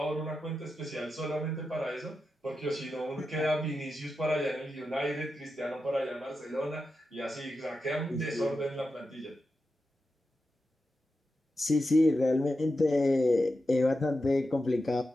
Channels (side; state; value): both; normal; correlation 0.90